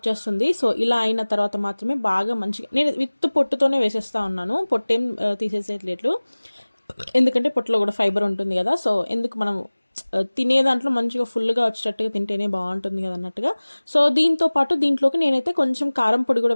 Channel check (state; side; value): inverted; both; correlation -1.00